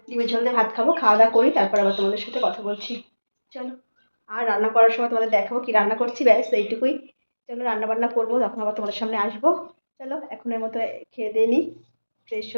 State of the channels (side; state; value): both; inverted; correlation -1.00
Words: ডিমের ঝোল দিয়ে ভাত খাবো, খাওয়া দাওয়া করি, তারপর আবার তোমাদের সাথে কথা বলছি। চলো, আর রান্না করার সময় তোমাদের দেখাবো কি রান্না করছি, ব্যাস এইটুকুই। চলো রান্না বান্না করবো, তখন আবার তোমাদের সামনে আসবো। চলো এখনের মতো খেয়ে দিয়ে নিই, ফ্রেশ